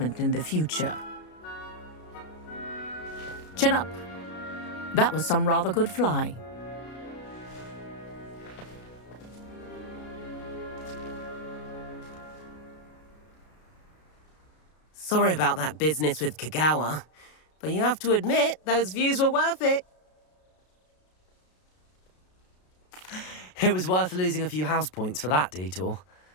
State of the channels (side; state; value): right; late; 33 ms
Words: in the future. Chin up. That was some rather good flying. Sorry about that business with Kagawa, but you have to admit, those views were worth it. It was worth losing a few house points for that detour.